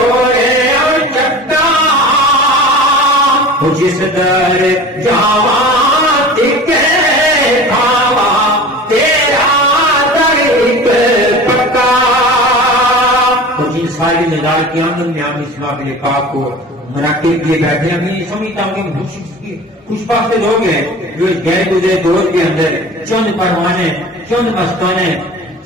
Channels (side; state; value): both; normal; correlation 0.37